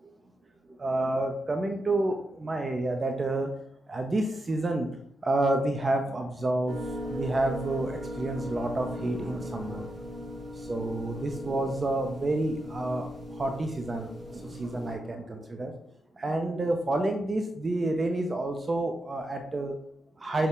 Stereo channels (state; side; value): normal; both; correlation 0.86